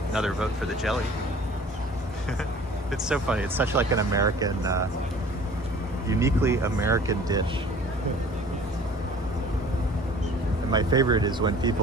Another vote for the jelly. It's so funny. It's such like an American, uniquely American dish. And my favorite is when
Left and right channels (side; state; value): both; normal; correlation 0.48